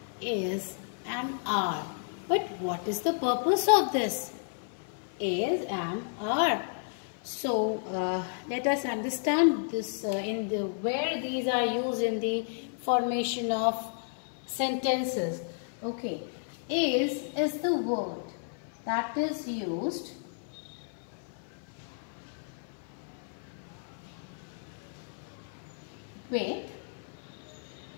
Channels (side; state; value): right; silent; 56 dB below the other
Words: is and are. But what is the purpose of this? Is, am, are. So let us understand this where these are used in the formation of sentences. Okay, is the word that is used with